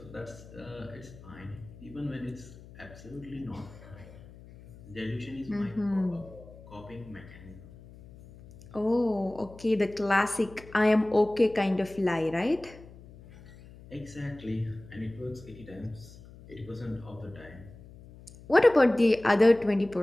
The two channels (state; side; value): noise; left; hum, 19 dB below the sound